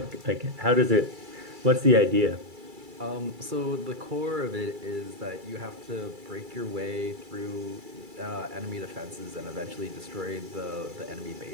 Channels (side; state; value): left; late; 2.3 ms